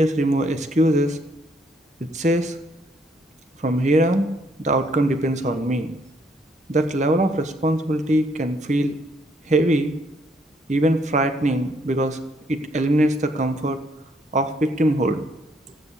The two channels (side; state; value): both; normal; correlation 0.69